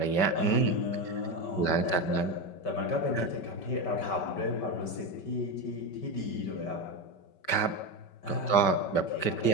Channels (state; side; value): late; right; 5.2 ms